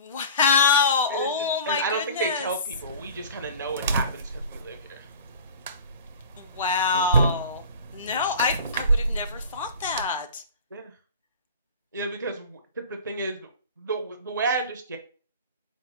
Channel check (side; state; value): both; inverted; correlation -0.40